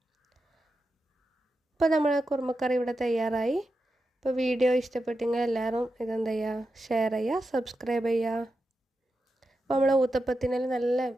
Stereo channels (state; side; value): normal; both; correlation 0.89